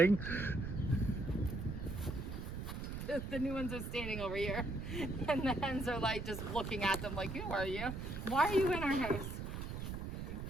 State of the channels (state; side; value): noise; right; rumble, 6 dB below the sound